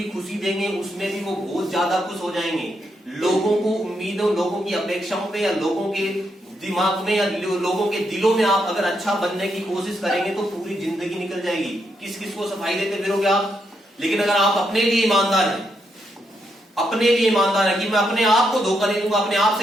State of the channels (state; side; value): normal; both; correlation 0.80